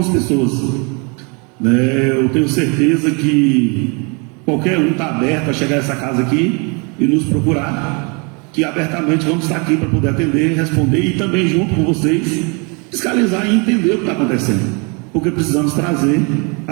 pessoas, né? Eu tenho certeza que qualquer um está aberto a chegar a essa casa aqui e nos procurar, que abertamente vamos estar aqui para poder atender, responder e também junto com vocês fiscalizar e entender o que está acontecendo, porque precisamos trazer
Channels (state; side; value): quieter; left; 32.6 dB